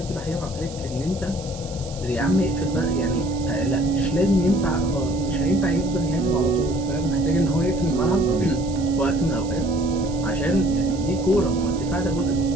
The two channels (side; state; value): right; noise; hiss, 17 dB below the sound